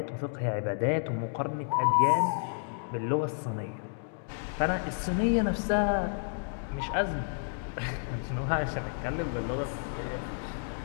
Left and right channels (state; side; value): silent; right; digital silence